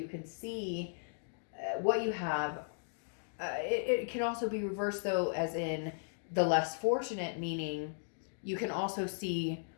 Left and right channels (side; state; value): right; silent; digital silence